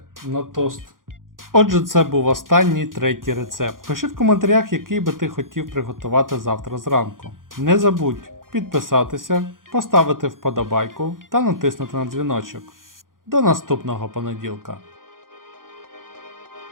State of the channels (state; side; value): late; left; 0.90 ms